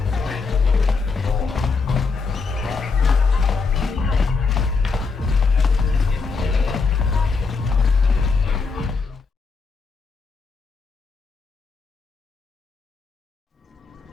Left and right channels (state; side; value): quieter; right; 4.6 dB